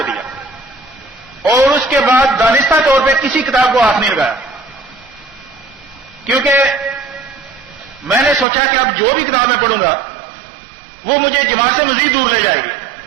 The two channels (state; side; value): drops out; left; at 8.5 s